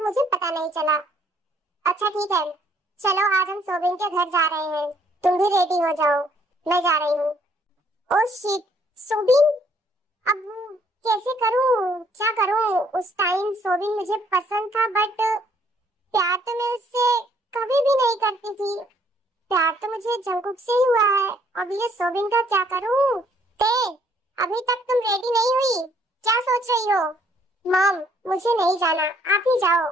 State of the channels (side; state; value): both; normal; correlation 0.65